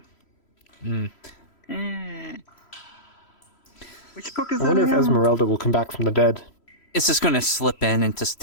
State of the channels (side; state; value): right; late; 3.0 ms